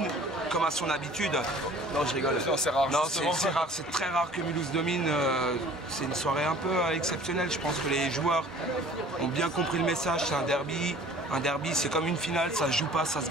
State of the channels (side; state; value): both; normal; correlation 0.49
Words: comme à son habitude. Non, je rigole. Non, c'est rare. Non, c'est rare. C'est très rare que Mulhouse domine. C'est une soirée un peu exceptionnelle. Je pense que les joueurs ont bien compris le message. C'est un derby. Un derby, c'est comme une finale. Ça se joue pas, ça se